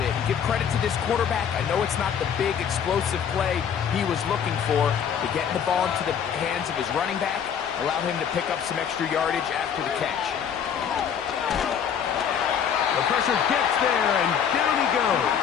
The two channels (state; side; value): quieter; right; 8.0 dB